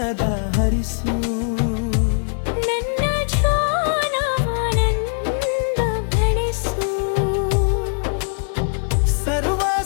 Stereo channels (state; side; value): silent; right; digital silence